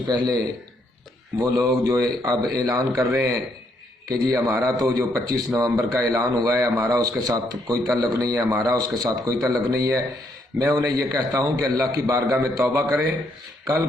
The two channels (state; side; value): normal; both; correlation 0.73